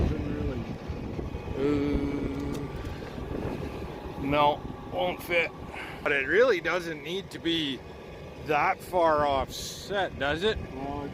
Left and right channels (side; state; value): both; identical; correlation 1.00